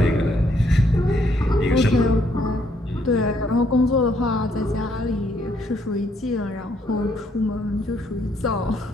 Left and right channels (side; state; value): both; normal; correlation 0.70